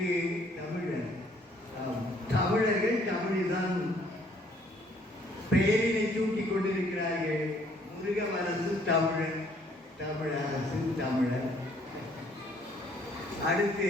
தமிழர்கள் தமிழ்தான் பெயரினை சூட்டிக் கொண்டிருக்கிறார்கள். முருகவரசு தமிழன், தமிழரசு தமிழர்.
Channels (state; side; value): normal; both; correlation 0.63